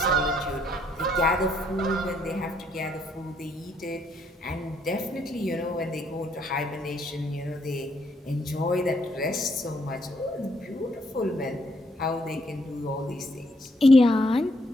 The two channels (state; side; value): normal; both; correlation 0.71